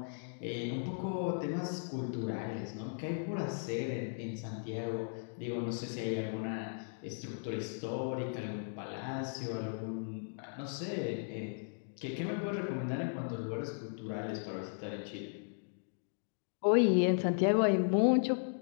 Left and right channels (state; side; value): silent; right; digital silence